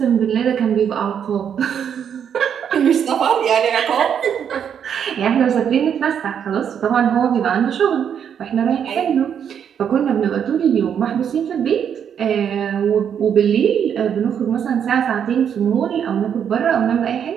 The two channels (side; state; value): left; quieter; 8.3 dB